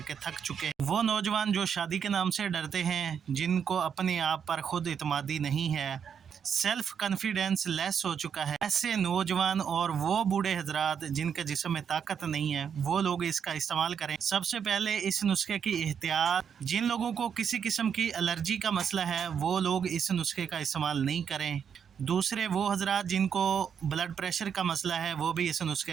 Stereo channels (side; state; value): left; quieter; 7.5 dB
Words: थक चुके हैं। वो नौजवान जो शादी के नाम से डरते हैं, जिनको अपने आप पर खुद इत्मीनान नहीं है, सेल्फ कॉन्फिडेंस लेस हो चुका है, ऐसे नौजवान और वो बूढ़े हजरात जिनके जिस्म में ताकत नहीं है, वो लोग इसका इस्तेमाल करें। सबसे पहले इस नुस्खे की एहतियात, जिन लोगों को किसी किस्म की एलर्जी का मसला है वो लोग इस नुस्खे का इस्तेमाल नहीं करें। दूसरे वो हजरात जिनको ब्लड प्रेशर का मसला है वो भी इस